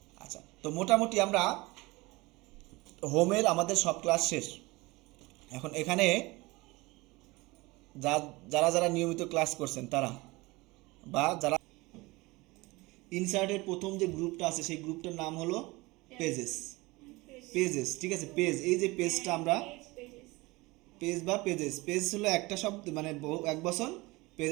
আচ্ছা, তো মোটামুটি আমরা হোমের আমাদের সব ক্লাস শেষ। এখন এখানে যারা যারা নিয়মিত ক্লাস করছেন তারা, বা যারা ইনসার্টের প্রথম যে গ্রুপটা আছে সেই গ্রুপটার নাম হলো পেজেস। পেজেস, ঠিক আছে, পেজ, এই যে পেজটা আমরা পেজ বা পেজেস, পেজ হলো একটা শব্দ মানে এক বচন,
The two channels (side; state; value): left; quieter; 22.6 dB